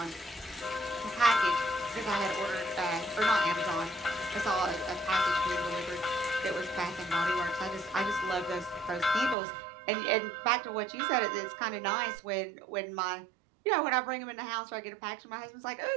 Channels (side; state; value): left; drops out; at 9.3 s